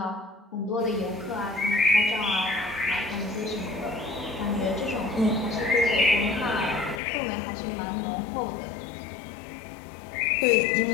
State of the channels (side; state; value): right; drops out; at 7.0 s